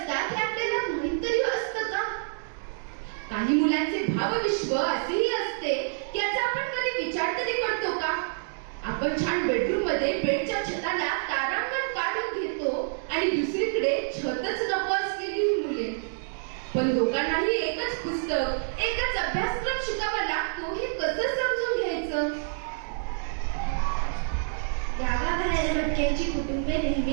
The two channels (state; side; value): silent; left; digital silence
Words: हे आपल्याला माहित तरी असतं का? काही मुलांचे भावविश्व असेही असते याचा आपण कधी विचार तरी करतो का? आपण छान बेडरूम मध्ये बेडच्या छताला तारांगण काढून घेतो आणि दुसरीकडे छतच नको असलेली मुले. पण दोघांनाही एकच पुस्तक, एकच अभ्यासक्रम शिकावा लागतो हे कसं समजून घ्यायचं?